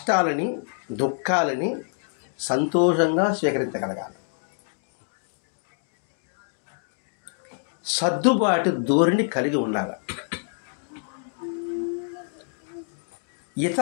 దుఃఖాలని సంతోషంగా స్వీకరించగలగాలి. సర్దుబాటు ధోరణి కలిగి ఉండాలి.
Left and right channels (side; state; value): right; silent; 61 dB below the other